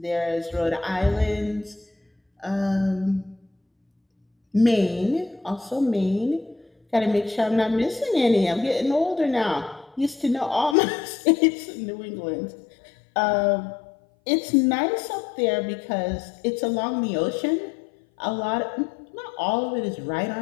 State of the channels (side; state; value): right; drops out; at 10.8 s